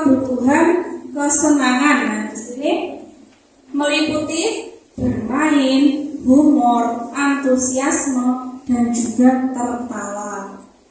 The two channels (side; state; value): both; identical; correlation 1.00